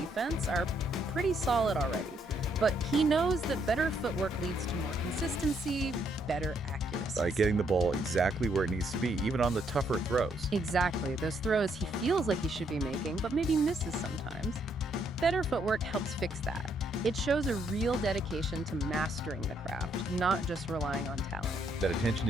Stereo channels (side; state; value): both; normal; correlation 0.72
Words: are pretty solid already. But he knows that better footwork leads to more consistency, better accuracy. By getting the ball exactly where it needs to be, even on the tougher throws. Exactly. Those throws he feels like he should be making, but maybe misses sometimes. Better footwork helps fix that. It shows a real dedication to mastering the craft, not just relying on talent. That attention